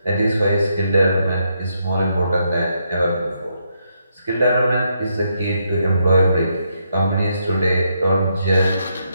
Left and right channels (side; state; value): both; inverted; correlation -0.78